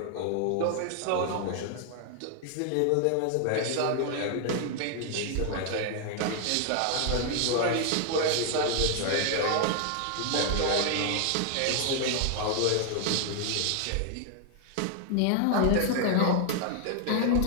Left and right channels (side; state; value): both; different; correlation 0.00